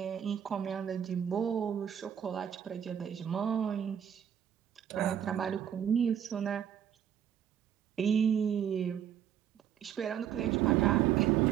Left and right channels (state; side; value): quieter; left; 9.3 dB